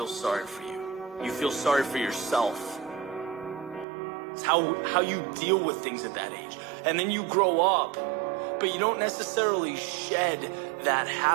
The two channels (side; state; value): left; drops out; at 3.9 s